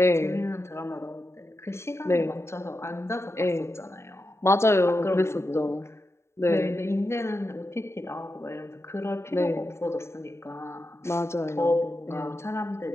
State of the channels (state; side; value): late; right; 0.13 ms